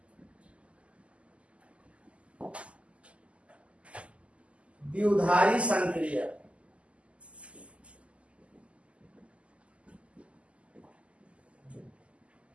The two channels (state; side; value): late; left; 0.059 ms